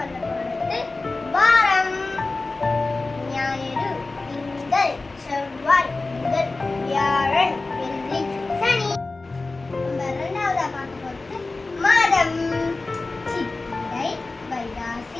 போறது வாரம். ஞாயிறு, திங்கள், செவ்வாய், புதன், வியாழன், வெள்ளி, சனி. நம்ம இரண்டாவதா பார்க்க போறது மாதம். சித்திரை,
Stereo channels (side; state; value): right; quieter; 3.4 dB